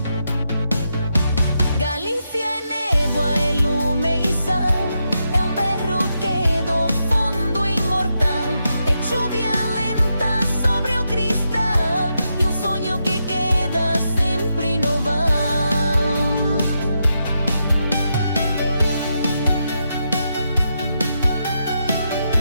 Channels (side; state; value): both; inverted; correlation -0.84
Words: Galícia é névoa, é lume e sal, é berro que do fundo imortal, é lluvia lenta sobre o cristal e sonho que queda sempre no val.